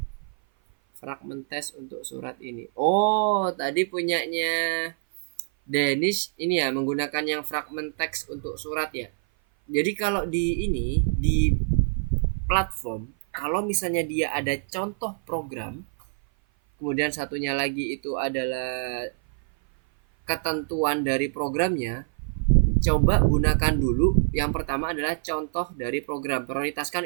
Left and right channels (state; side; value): silent; left; 56 dB below the other